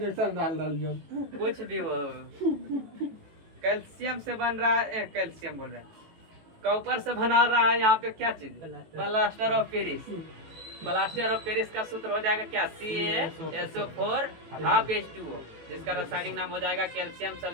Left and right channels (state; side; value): late; left; 18 ms